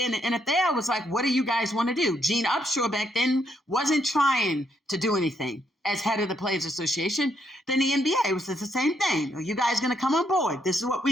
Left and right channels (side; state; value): both; normal; correlation 0.75